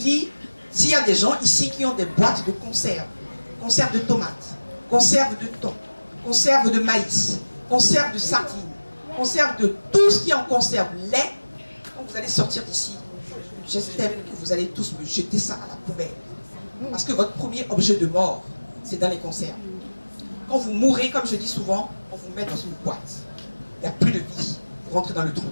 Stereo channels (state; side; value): inverted; both; correlation -1.00